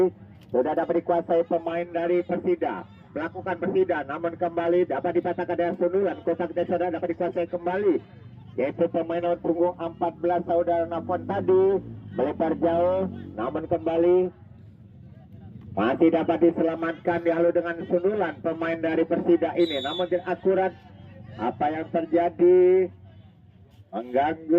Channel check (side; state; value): both; identical; correlation 1.00